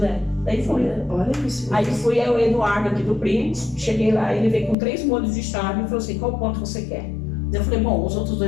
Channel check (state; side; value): drops out; right; at 4.8 s